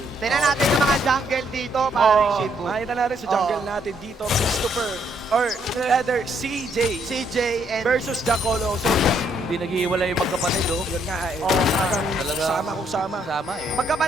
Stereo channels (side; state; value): both; normal; correlation 0.71